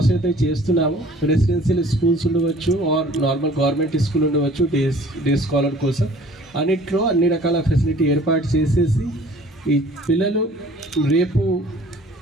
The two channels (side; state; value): both; normal; correlation 0.51